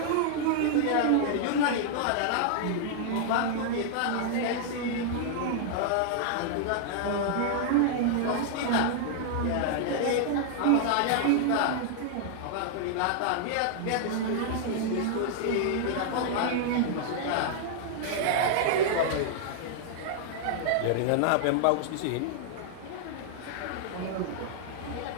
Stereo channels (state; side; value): different; both; correlation -0.01